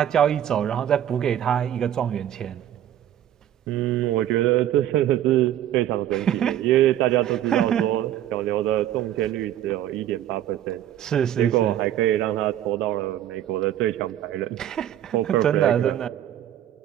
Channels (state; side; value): quieter; left; 11.6 dB